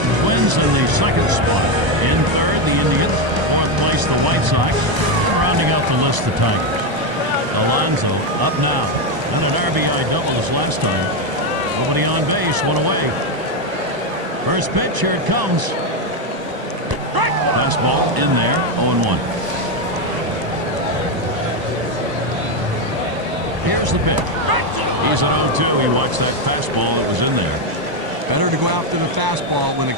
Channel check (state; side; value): late; left; 1.0 ms